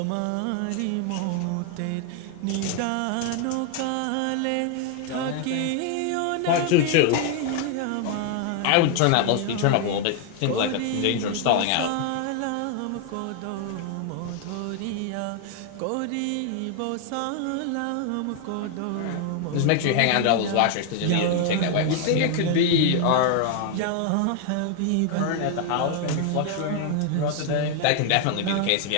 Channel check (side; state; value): both; different; correlation 0.00